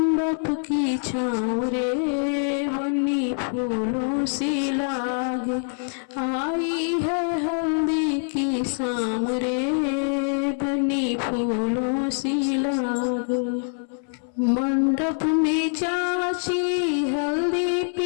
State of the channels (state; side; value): silent; right; 62 dB below the other